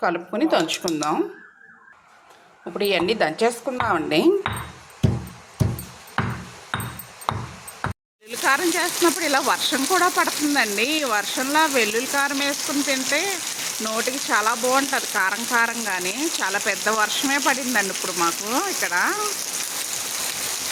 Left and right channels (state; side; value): identical; both; correlation 1.00